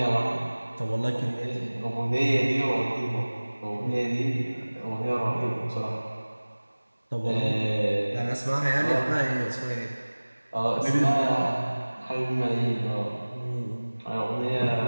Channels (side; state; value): both; inverted; correlation -1.00